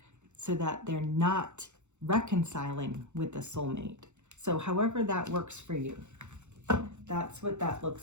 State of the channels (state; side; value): late; left; 0.83 ms